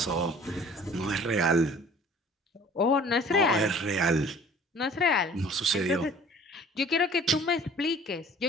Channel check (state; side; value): normal; both; correlation 0.49